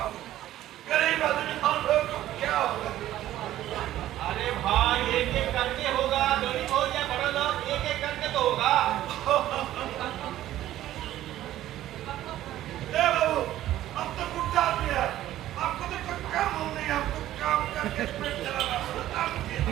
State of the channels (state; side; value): quieter; left; 13.6 dB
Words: अरे भाई एक एक करके होगा, गरीब हो या बड़ा लोग, एक एक करके तो होगा। बाबू, अब तो गुड्डा आदमी है, आपको तो कोई काम हो नहीं, आपको काम करके पेट चलाना।